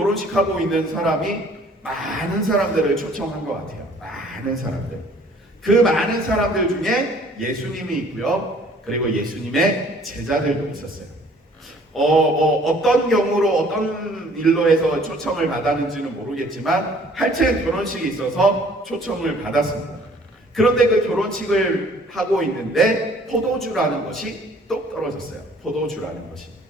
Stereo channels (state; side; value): normal; both; correlation 0.56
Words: 하고 있는 사람이 많은 사람들을 초청한 것 같아요. 많은 사람들. 그 많은 사람들 중에 예수님이 있고요. 그리고 예수님의 제자들도 있었어요. 어떤 경우로 어떤 일로 해서 초청을 받았는지는 모르겠지만 하여튼 결혼식이 있어서 초청을 받았습니다. 그런데 그 결혼식을 하고 있는데 포도주라는 것이 똑 떨어졌어요. 포도주라는 것이.